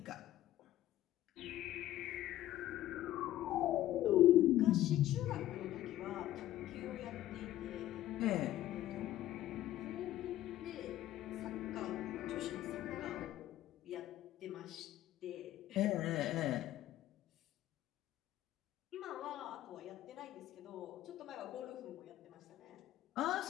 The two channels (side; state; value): right; quieter; 13.9 dB